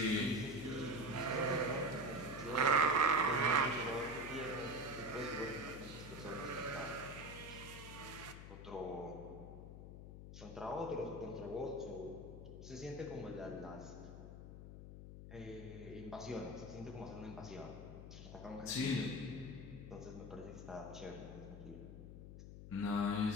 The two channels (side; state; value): left; noise; hum, 11 dB below the sound